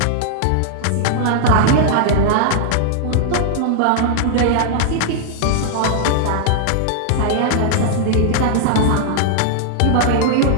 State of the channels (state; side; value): different; both; correlation -0.01